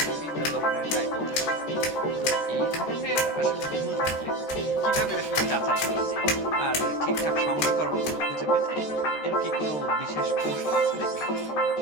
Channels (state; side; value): late; right; 13 ms